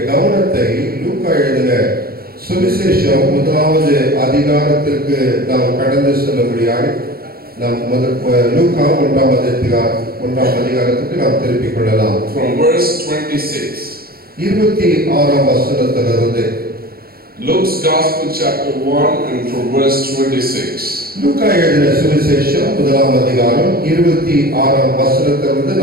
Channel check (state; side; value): late; left; 0.44 ms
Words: கவனத்தை லூக்கா எழுதின சுவிசேஷம் முதலாவது அதிகாரத்திற்கு நாம் கடந்து செல்லும்படியாக நாம் லூக்கா ஒன்றாம் அதிகாரத்துக்கு நாம் திருப்பிக் கொள்ளலாம். From verse 26. 26ஆம் வசனத்திலிருந்து. Luke's Gospel chapter 1 and from verse 26. லூக்கா எழுதின சுவிசேஷம் முதலாம் அதிகாரம் 26ஆம் வசனத்திலிருந்து